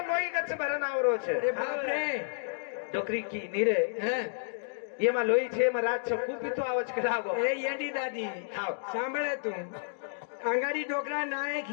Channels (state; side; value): silent; right; digital silence